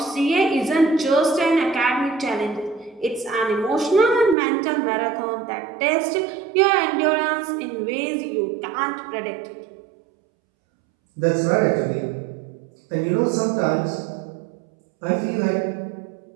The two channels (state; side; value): drops out; left; at 4.4 s